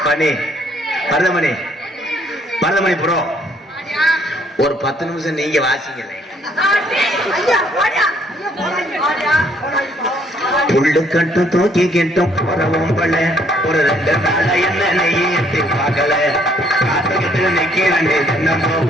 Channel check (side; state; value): both; normal; correlation 0.66